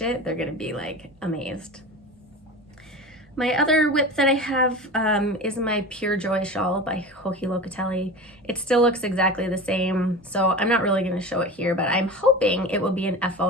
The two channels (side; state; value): both; normal; correlation 0.31